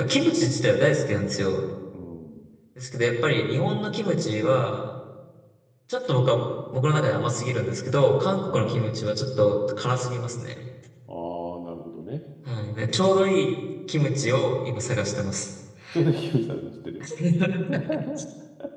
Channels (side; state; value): both; identical; correlation 1.00